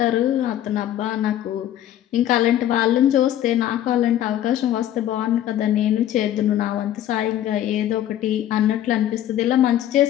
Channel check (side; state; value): right; quieter; 11.9 dB